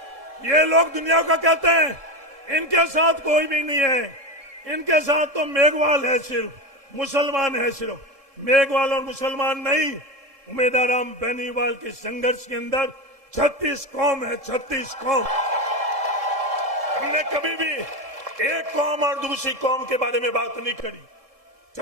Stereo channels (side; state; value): left; late; 1.7 ms